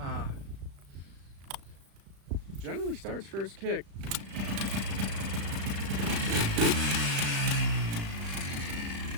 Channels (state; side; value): late; left; 35 ms